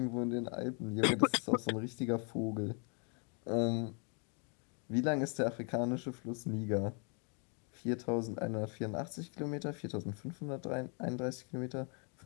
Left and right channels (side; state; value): right; quieter; 38.1 dB